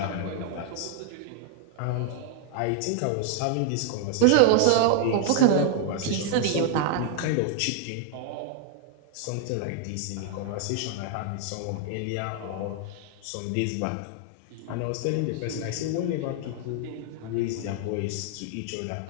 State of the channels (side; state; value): both; different; correlation 0.00